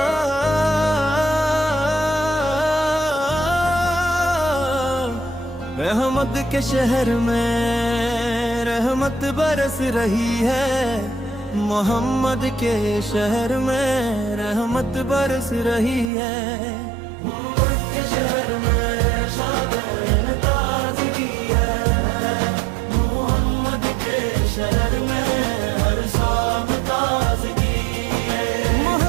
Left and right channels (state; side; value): drops out; left; at 16.1 s